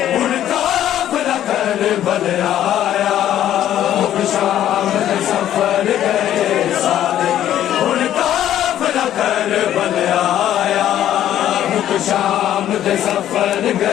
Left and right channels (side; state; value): right; quieter; 11.6 dB